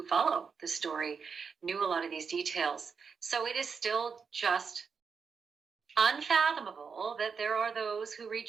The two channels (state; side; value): quieter; left; 5.8 dB